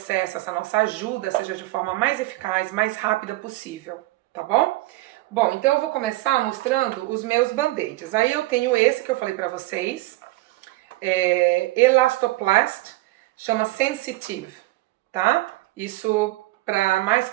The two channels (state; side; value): quieter; left; 19.1 dB